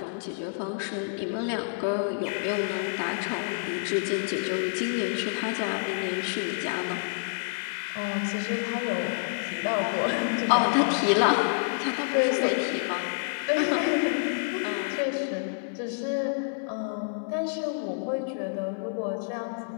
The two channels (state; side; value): silent; right; digital silence